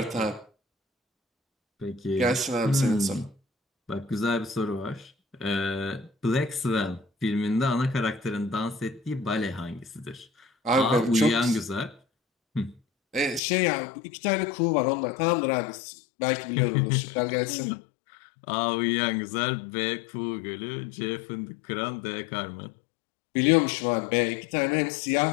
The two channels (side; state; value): right; drops out; at 13.4 s